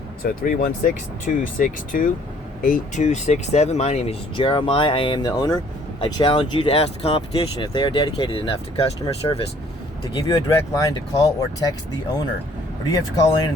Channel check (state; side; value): normal; both; correlation 0.59